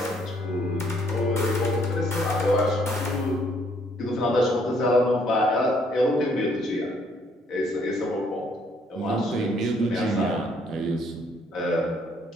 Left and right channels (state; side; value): normal; both; correlation 0.67